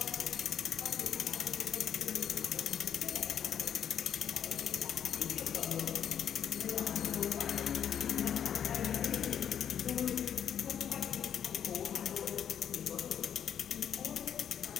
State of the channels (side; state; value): right; quieter; 8.9 dB